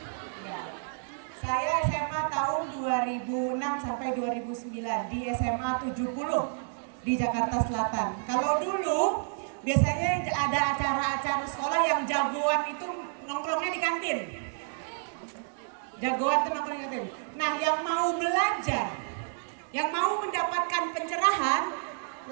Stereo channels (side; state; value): left; silent; digital silence